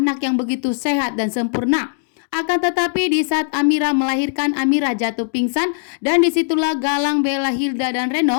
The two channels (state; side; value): silent; right; digital silence